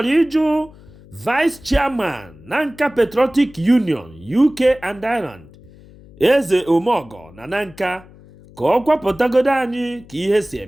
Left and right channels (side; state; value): left; noise; hum, 23 dB below the sound